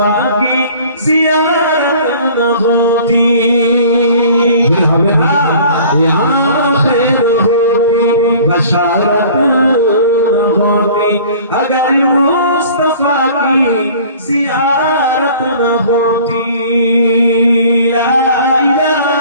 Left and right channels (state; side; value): inverted; both; correlation -0.48